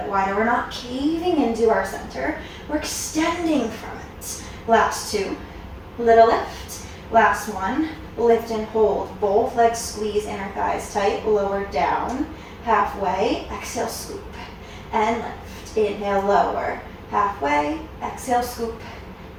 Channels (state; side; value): identical; both; correlation 1.00